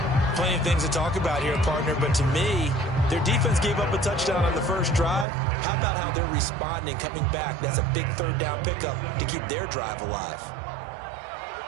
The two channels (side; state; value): left; drops out; at 5.2 s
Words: Plenty of things to talk about here, partner, but to me, their defense gave up a touchdown on the 1st drive. How about how they're responding, coming back? That's a big 3rd down pickup to keep their drive alive.